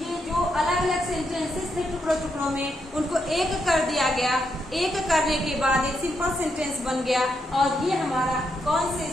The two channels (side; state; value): both; normal; correlation 0.80